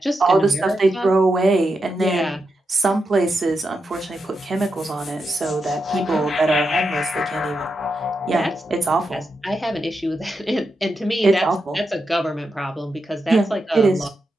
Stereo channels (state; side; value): normal; both; correlation 0.86